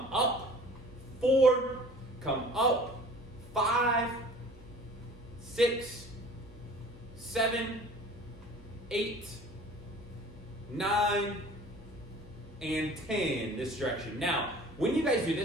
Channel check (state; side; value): normal; both; correlation 0.46